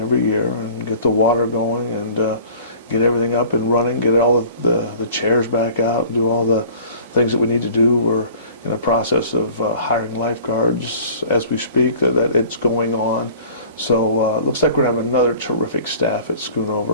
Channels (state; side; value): inverted; both; correlation -0.47